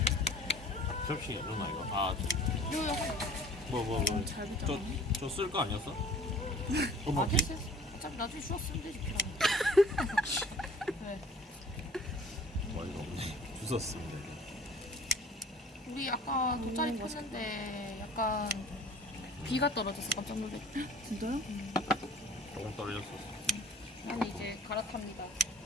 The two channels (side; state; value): both; normal; correlation 0.48